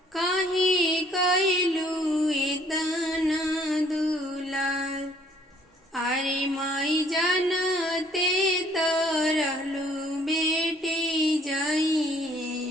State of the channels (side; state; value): both; normal; correlation 0.61